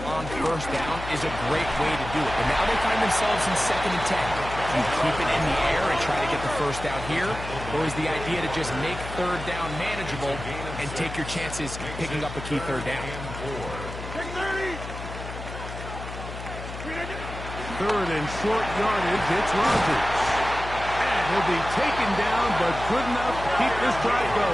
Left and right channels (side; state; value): left; noise; hum, 10 dB below the sound